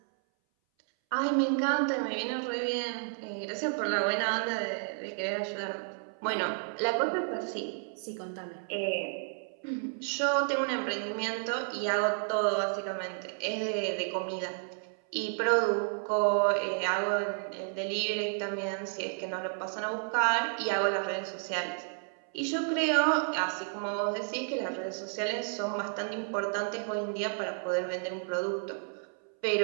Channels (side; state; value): left; silent; 57 dB below the other